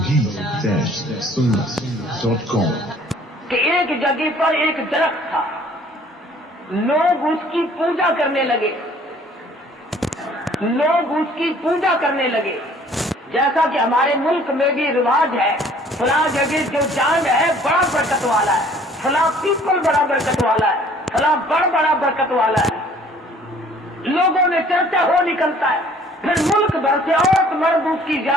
کہ ایک جگہ پر ایک درخت تھا، لوگ اس کی پوجا کرنے لگے، لوگ اس کی پوجا کرنے لگے، جیسا کہ ہمارے ملک میں بھی رواج ہے، فلاں جگہ جو جان ہے بڑا برکت والا ہے، فلاں پیپل بڑا برکت والا ہے، فلاں بڑا برکت والا ہے، لوگوں میں چرچا ہو نکلتا ہے، پھر ملک بھر سے عورت مرد اس کی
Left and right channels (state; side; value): normal; both; correlation 0.55